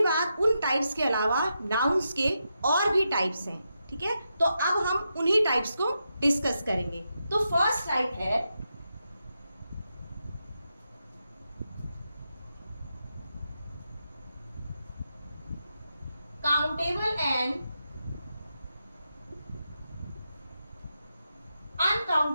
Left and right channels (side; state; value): both; inverted; correlation -0.86